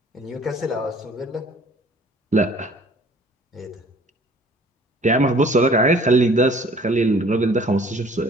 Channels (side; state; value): both; normal; correlation 0.53